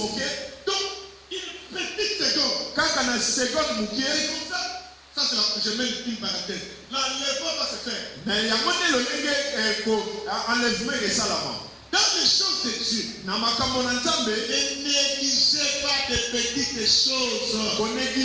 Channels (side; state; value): both; identical; correlation 1.00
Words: Donc, une petite seconde. Kaka na seconde moke. Et comme ça, c'est je mets une parenthèse. L'enlèvement va se faire. Na yango te lolenge ko enlèvement esalama. Dans les choses de Dieu, Na makambo na Nzambe. ne négligez pas de petites choses.